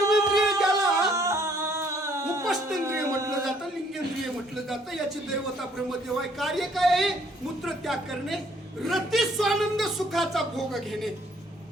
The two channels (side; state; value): both; normal; correlation 0.63